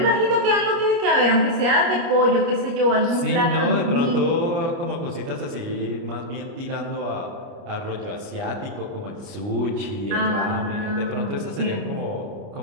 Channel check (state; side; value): late; left; 29 ms